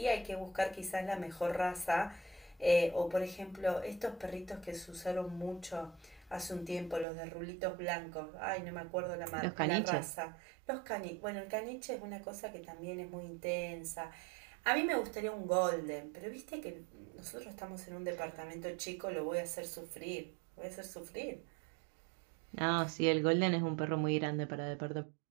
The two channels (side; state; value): left; drops out; at 7.1 s